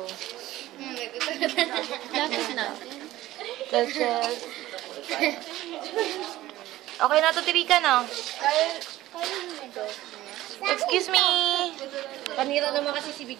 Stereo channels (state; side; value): quieter; left; 15.7 dB